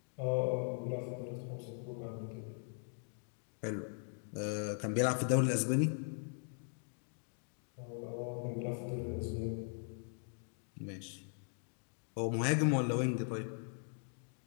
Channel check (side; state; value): right; silent; 51 dB below the other